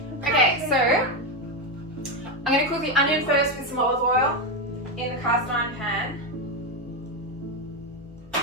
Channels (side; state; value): both; normal; correlation 0.09